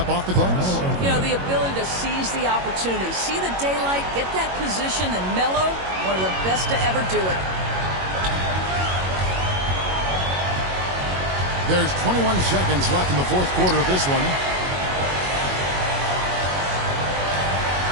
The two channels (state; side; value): late; left; 22 ms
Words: off the glass. You know, the ability to seize the opportunity, see the daylight, get that position, and mellow, one of the best to ever do it. There's 21 seconds left in the fourth quarter of this one.